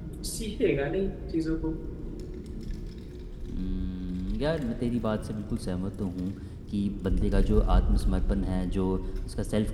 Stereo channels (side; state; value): both; identical; correlation 1.00